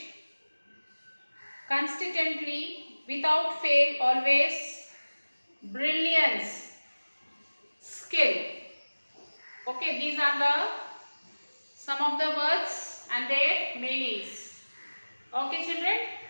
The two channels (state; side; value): inverted; both; correlation -1.00